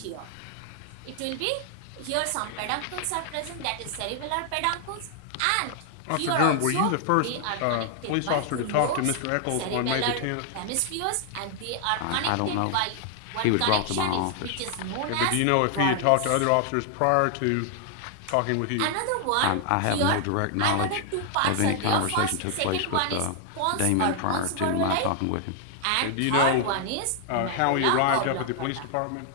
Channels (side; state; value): both; different; correlation 0.00